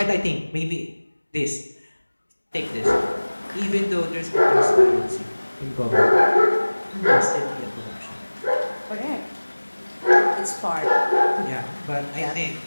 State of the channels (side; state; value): both; inverted; correlation -1.00